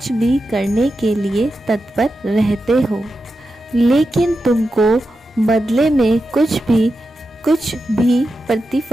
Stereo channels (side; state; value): both; normal; correlation 0.90